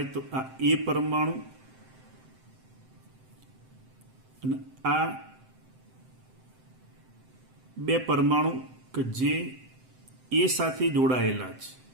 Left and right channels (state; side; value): late; left; 7.8 ms